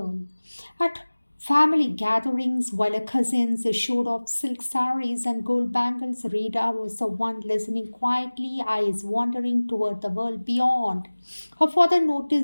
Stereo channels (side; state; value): both; inverted; correlation -1.00